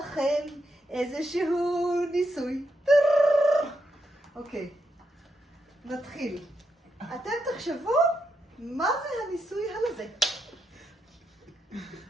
איזשהו ניסוי. אוקיי, נתחיל. אתם תחשבו מה זה הניסוי הזה.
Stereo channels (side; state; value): both; normal; correlation 0.82